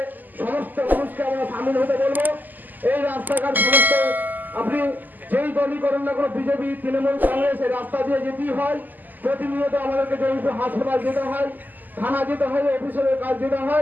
সমস্ত মানুষকে আমরা সামিল হতে বলবো। এই রাস্তাঘাট সমস্ত আপনি যেই দলই করেন না কোনো, বিজেপি, তৃণমূল, কংগ্রেস, এই রাস্তা দিয়ে যেতেই হয়। প্রতিনিয়ত আমাদেরকে জয়পুর হাসপাতাল যেতে হয়, থানা যেতে হয়, অফিসের কাজ যেতে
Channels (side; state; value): left; late; 0.085 ms